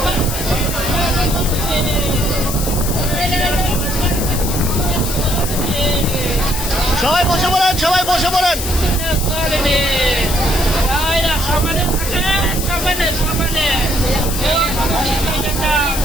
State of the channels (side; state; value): left; noise; hiss, 5 dB below the sound